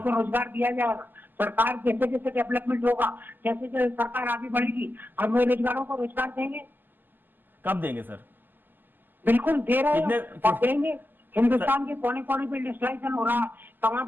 रोजगार दिया जाएगा। सरकार जैसे जैसे डेवलपमेंट होगा, जैसे जैसे सरकार आगे बढ़ेगी, हम बेरोजगारों को रोजगार देंगे। कब देंगे सर? बिल्कुल दे रहे हैं कितने- और देंगे। हिंदुस्तान के कोने कोने पे इंडस्ट्रियलाइजेशन हो रहा है, तमाम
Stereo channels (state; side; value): late; left; 0.090 ms